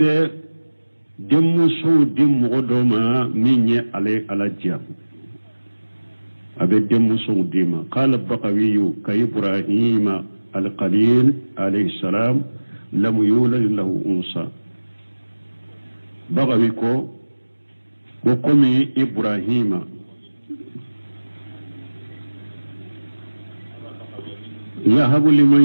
دم سو دم غدوما من على جاب أبي دم سو ديما قال البقوي كإبراهيم القليل عليه السلام لم يولد له أنثى bagawi ko komi ibrahima yahabu liman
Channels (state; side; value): inverted; both; correlation -1.00